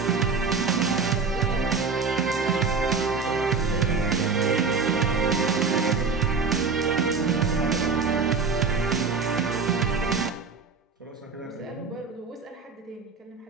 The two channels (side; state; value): left; quieter; 4.9 dB